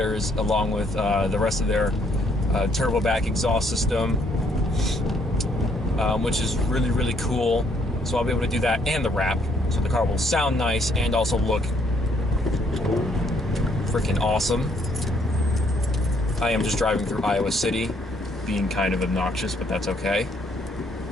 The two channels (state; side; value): normal; both; correlation 0.68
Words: along with the rest of their turbo back exhaust system, which is really, really cool. So I'll be able to do that and the wrap, so the car will sound nice and also look freaking awesome. I am just driving through Iowa City, being kind of obnoxious, but that's okay.